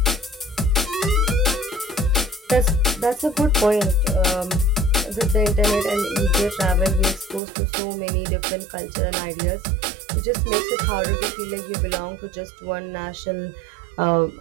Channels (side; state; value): left; drops out; at 7.4 s